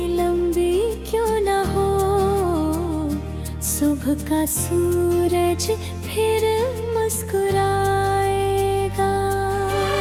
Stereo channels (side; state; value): both; identical; correlation 1.00